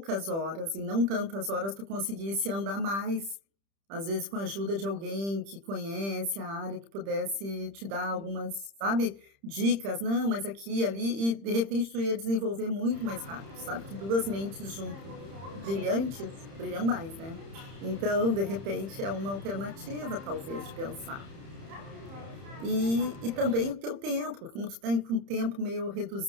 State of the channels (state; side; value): late; left; 30 ms